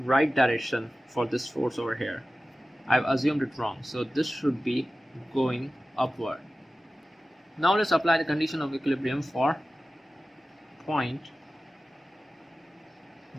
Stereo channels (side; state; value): both; normal; correlation 0.96